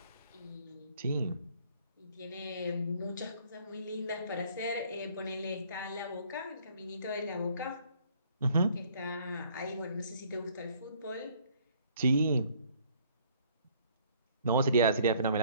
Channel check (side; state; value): both; inverted; correlation -0.60